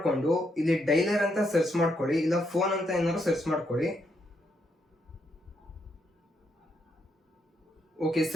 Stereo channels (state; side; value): normal; both; correlation 0.78